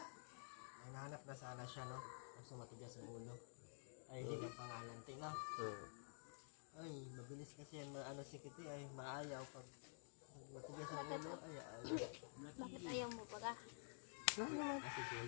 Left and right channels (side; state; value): right; silent; digital silence